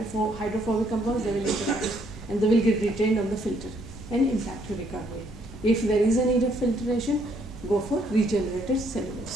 compounds, they will interact and they will get retained on the filter and impact your recovery. If there is a need of filtration, go for regenerated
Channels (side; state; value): both; normal; correlation 0.69